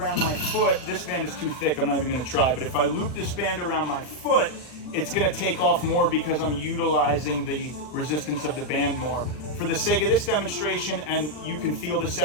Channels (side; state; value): right; late; 40 ms